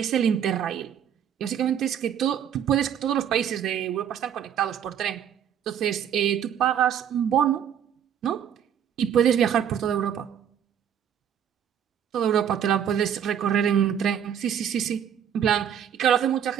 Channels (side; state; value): left; quieter; 9.1 dB